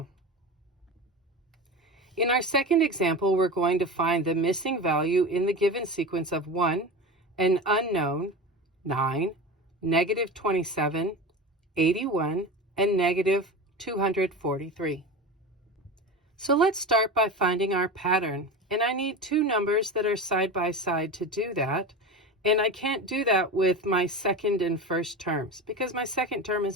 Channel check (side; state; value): both; normal; correlation 0.27